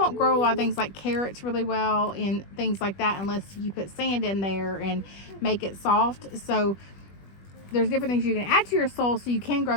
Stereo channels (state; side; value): late; right; 21 ms